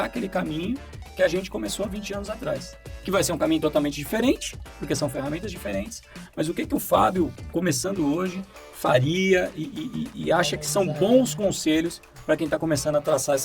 aquele caminho que a gente começou há 20 anos atrás. Que vai ser um caminho totalmente diferente, porque são ferramentas diferentes, mas o que o Fábio, começando hoje, faria e acha que são bons conselhos para quem está começando a traçar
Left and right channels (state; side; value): identical; both; correlation 1.00